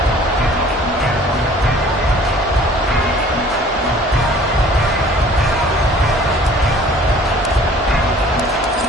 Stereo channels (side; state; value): both; normal; correlation 0.51